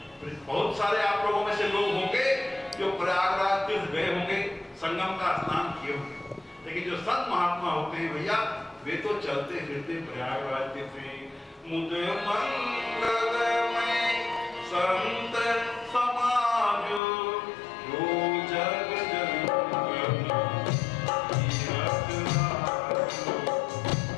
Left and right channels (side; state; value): right; drops out; at 17.0 s